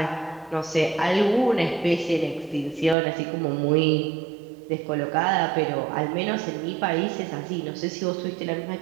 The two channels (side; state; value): left; drops out; at 3.0 s